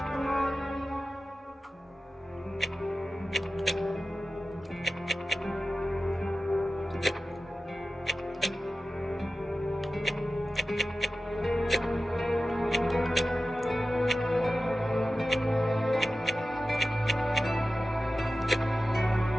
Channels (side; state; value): both; normal; correlation 0.94